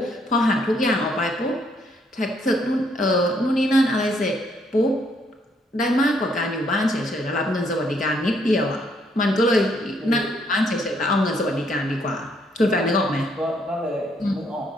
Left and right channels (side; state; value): both; normal; correlation 0.70